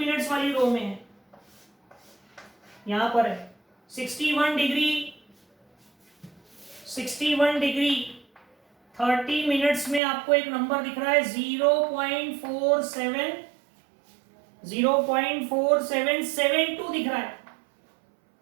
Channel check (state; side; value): drops out; left; at 10.0 s